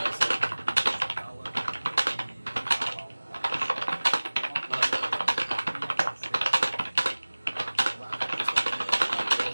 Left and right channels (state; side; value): inverted; both; correlation -1.00